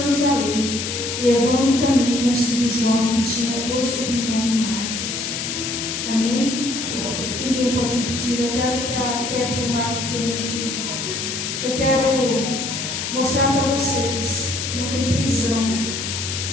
levando também consigo João, que tinha por sobrenome Marcos. Amém? Ninguém pode impedir. Eu quero que a Kétia e o Marco venham aqui. Eu quero mostrar para vocês que não tem prisão.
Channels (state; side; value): noise; left; hiss, 4 dB below the sound